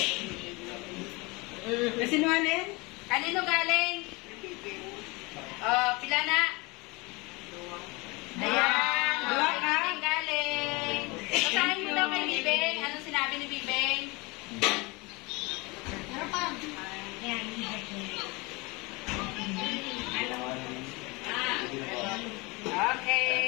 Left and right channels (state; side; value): quieter; right; 25.8 dB